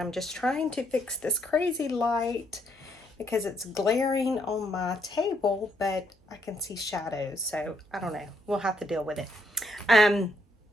just trying to fix this crazy light because it's glaring on my table, but I can see shadows. So I don't know. We'll have to deal with it.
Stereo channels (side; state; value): both; normal; correlation 0.73